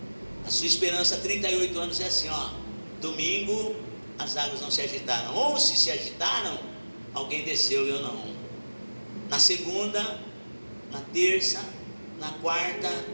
A sua esperança há 38 anos é assim, domingo as águas não se agitaram, ou se agitaram, alguém desceu e eu não. Na segunda, na terça, na quarta,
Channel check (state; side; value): inverted; both; correlation -1.00